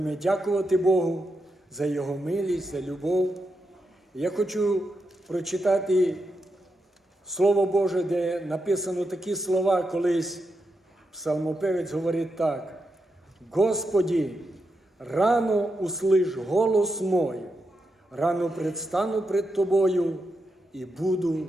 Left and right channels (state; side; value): normal; both; correlation 0.85